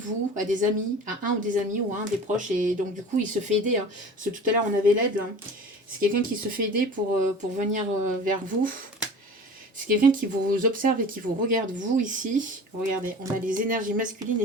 à des amis, à un ou des amis ou à un des proches, et donc du coup il se fait aider. Hein. Parce que tout à l'heure on avait l'aide. Hein. C'est quelqu'un qui se fait aider pour venir vers vous. C'est quelqu'un qui vous observe et qui vous regarde, vous ici. Regardez, on a les énergies masculines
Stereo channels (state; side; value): normal; both; correlation 0.39